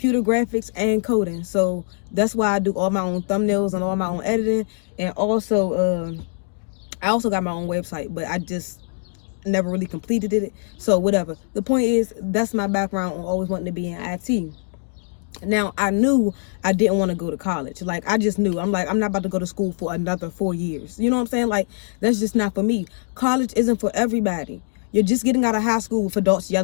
graphics and coding. So that's why I do all my own thumbnails and all my own editing. And also, I also got my own website, but I just never really completed it. So whatever. The point is, that's my background on always wanting to be in IT. Now, I knew I didn't want to go to college. Like, I just knew. I'm like, I'm not about to go to school for another 4 years. You know what I'm saying? Like, that's just not for me. College isn't for everybody. You're just getting out of high school with adults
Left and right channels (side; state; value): right; silent; digital silence